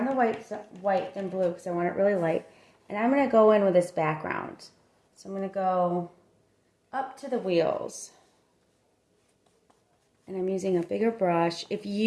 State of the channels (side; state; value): both; identical; correlation 1.00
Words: the white than blue because I want it really light. And I'm going to go in with this background. So I'm going to go up to the wheels. And I'm using a bigger brush. If